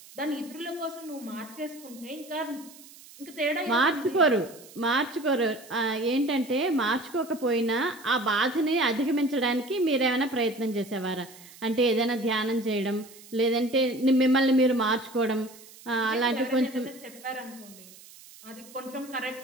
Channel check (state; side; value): noise; right; hiss, 21 dB below the sound